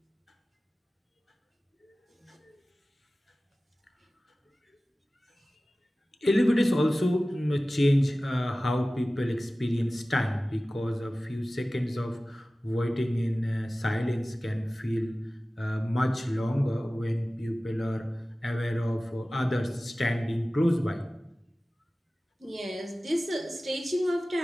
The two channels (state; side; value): normal; both; correlation 0.97